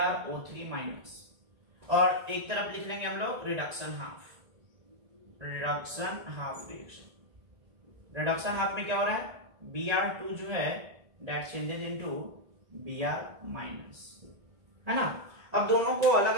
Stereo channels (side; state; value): left; late; 1.9 ms